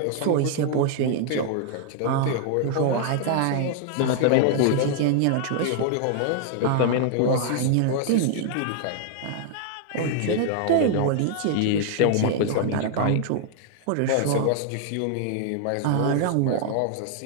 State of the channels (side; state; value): both; different; correlation 0.00